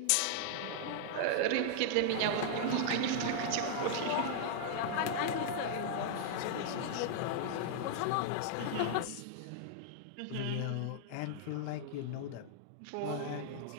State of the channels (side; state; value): both; different; correlation -0.01